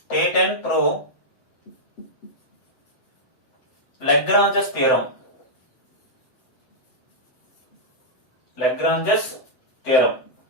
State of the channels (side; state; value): right; late; 7.8 ms